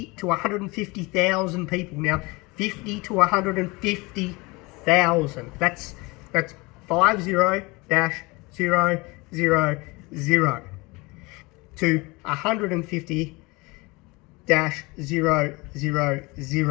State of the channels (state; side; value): quieter; right; 24.9 dB